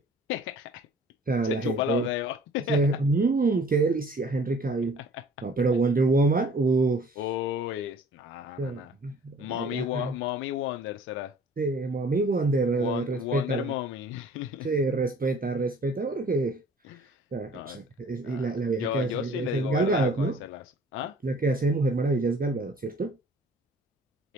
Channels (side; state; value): both; normal; correlation 0.51